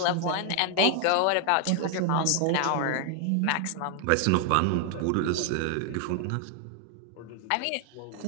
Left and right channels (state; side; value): different; both; correlation 0.00